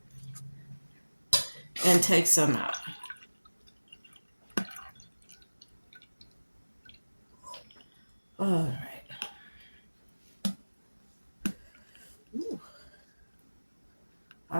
and take some out. All right. Ooh.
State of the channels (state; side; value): inverted; both; correlation -1.00